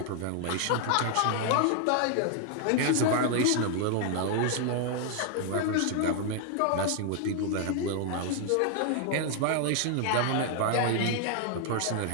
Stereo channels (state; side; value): different; both; correlation 0.00